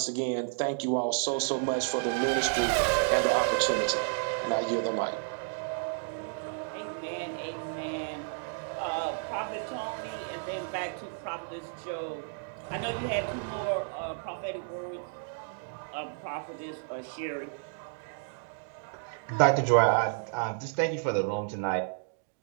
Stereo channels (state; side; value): silent; left; digital silence